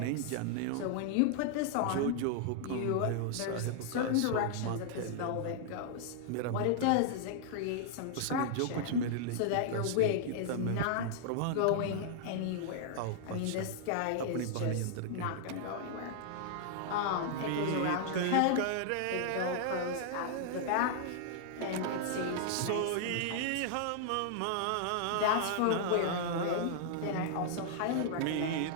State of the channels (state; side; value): different; both; correlation -0.01